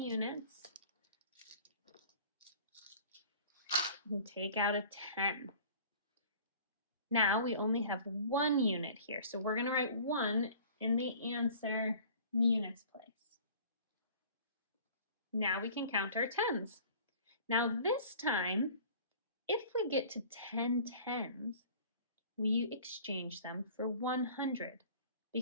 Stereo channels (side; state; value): both; inverted; correlation -0.47